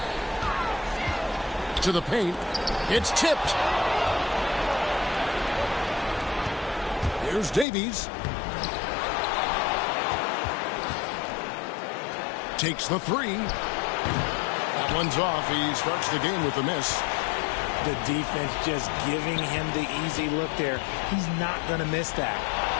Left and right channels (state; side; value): drops out; right; at 7.7 s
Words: To the paint. It's tipped. Here's Davies. Takes the three. That one's off. He starts the game with a miss. The defense just giving him the easy look there. He's not going to miss that.